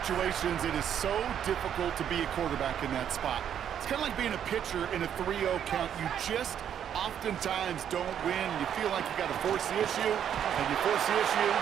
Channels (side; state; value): left; quieter; 9.2 dB